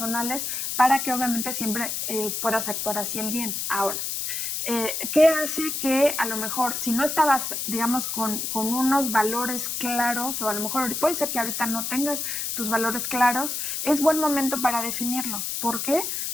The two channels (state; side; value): noise; left; hiss, 3 dB below the sound